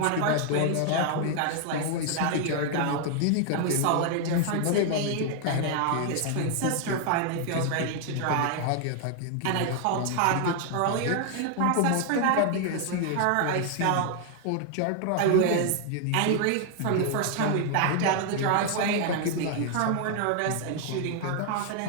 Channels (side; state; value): both; different; correlation 0.00